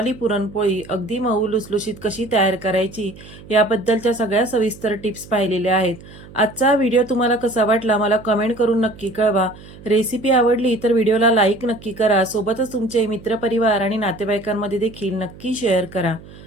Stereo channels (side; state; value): right; noise; hum, 19 dB below the sound